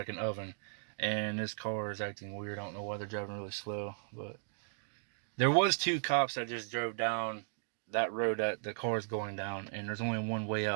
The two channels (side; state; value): left; silent; digital silence